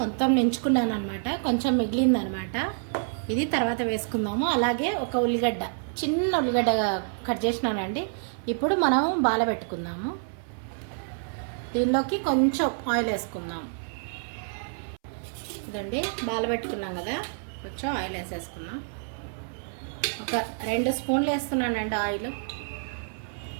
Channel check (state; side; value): silent; left; 59 dB below the other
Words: నించుకున్నాను అనమాట. కొంచెం మిగిలిందనమాట. ఇది తర్వాత వేసుకుందాము. అలాగే ఒక ఉల్లిగడ్డ, చిన్న ఉల్లిగడ్డ కట్ చేసినానండి. ఇప్పుడు మనం బాల పెట్టుకుందాము. దీనిలోకి కొంచెం ఆయిల్ వేసుకుందాం. ఇదండి, బాల పెట్టుకున్నాం కదా, కొంచెం ఆయిల్ వేసేసుకుందాం. ఒక 2 స్పూన్లు వేస్తున్నానండి ఆయిల్,